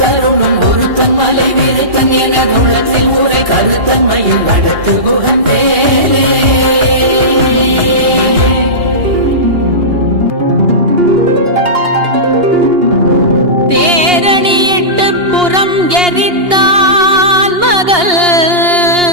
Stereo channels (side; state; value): left; late; 2.8 ms